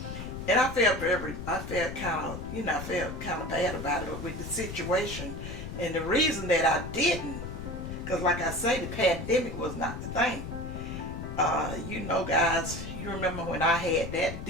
And I felt kind of bad about it with the situation. And the reason that I didn't, because like I say, the pandemic was not the thing. Guys, you remember when I had that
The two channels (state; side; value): noise; left; rumble, 8 dB below the sound